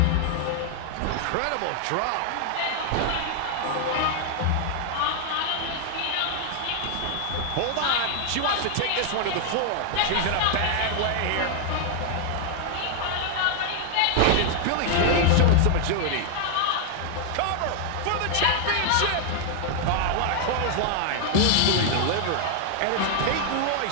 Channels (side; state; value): both; different; correlation 0.00